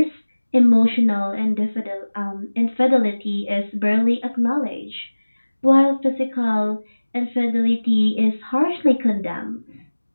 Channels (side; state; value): both; inverted; correlation -1.00